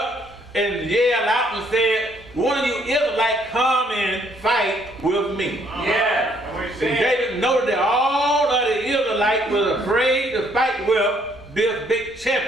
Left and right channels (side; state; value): both; normal; correlation 0.67